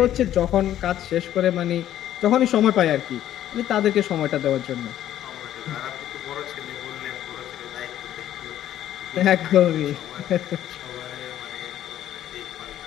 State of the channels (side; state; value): right; quieter; 12.0 dB